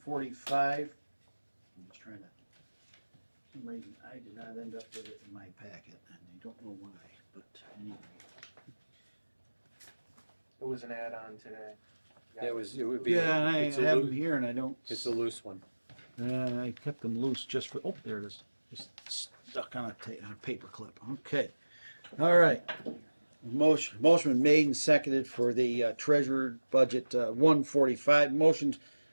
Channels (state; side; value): inverted; both; correlation -1.00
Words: I'm just trying to, for some reason, I did not end up with it in my packet, and I don't know why, but anyway. It was an add-on today. It would be. Yeah, and I it's a have loo- them here, and I don't. It's a loose one. I kept them loose just for. Oh, there it is. Just stuck on a paper clip. Okay. All right. Motion been made and seconded for the treasurer budget 145. Motion